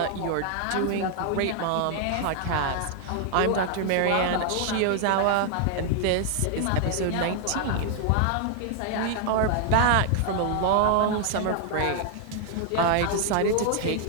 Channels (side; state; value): both; different; correlation 0.00